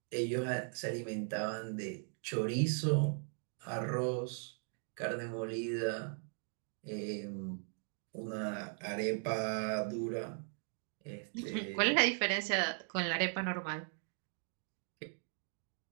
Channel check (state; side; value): silent; left; 52 dB below the other